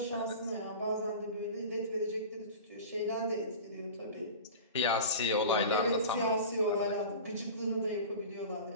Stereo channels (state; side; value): inverted; both; correlation -0.34